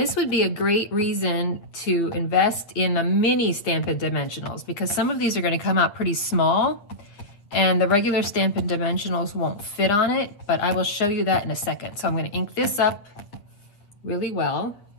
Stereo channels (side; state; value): right; late; 8.7 ms